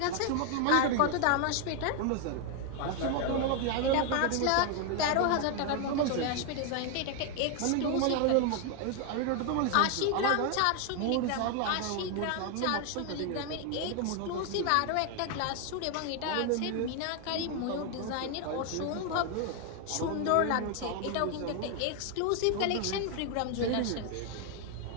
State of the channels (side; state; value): both; different; correlation 0.01